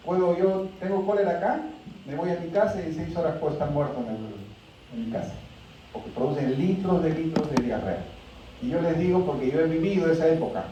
Tengo cólera acá, me voy a mi casa y en 6 horas puedo estar muerto en mi casa. Porque producen litros de diarrea. Y yo les digo porque yo he vivido esa época.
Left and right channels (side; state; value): both; identical; correlation 1.00